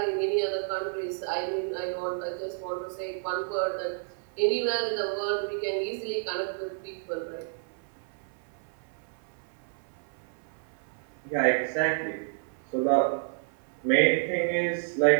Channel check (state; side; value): silent; left; 58 dB below the other